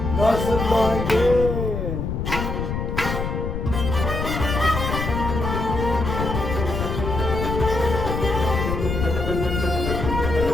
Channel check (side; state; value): left; noise; rumble, 3 dB below the sound